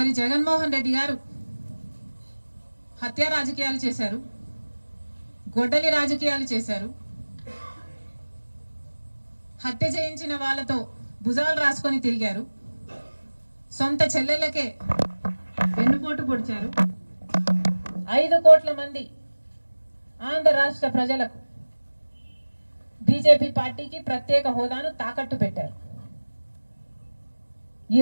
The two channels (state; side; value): inverted; both; correlation -1.00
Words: జగన్మోహన్ రెడ్డి గారు హత్య రాజకీయాలు చేశారు, గొడ్డలి రాజకీయాలు చేశారు, హత్య చేయించిన వాళ్ళతో భుజాలు రాసుకొని తిరిగారు, సొంత చెల్లెళ్ళకే వెన్నుపోటు పొడిచారు, 5 కోట్ల మంది ఆంధ్ర రాష్ట్ర ప్రజలకు బీజేపీ పార్టీకి ప్రత్యేక హోదాను తాకట్టు పెట్టారు.